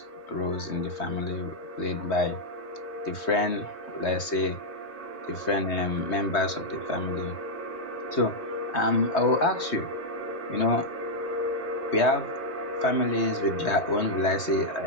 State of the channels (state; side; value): late; right; 3.2 ms